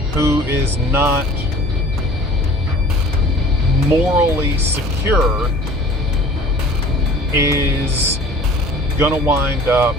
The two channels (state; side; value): normal; both; correlation 0.47